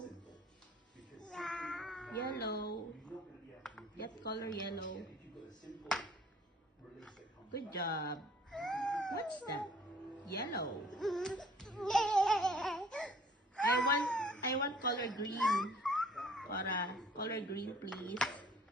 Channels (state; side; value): normal; both; correlation 0.55